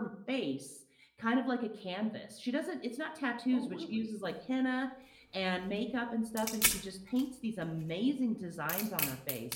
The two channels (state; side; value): identical; both; correlation 1.00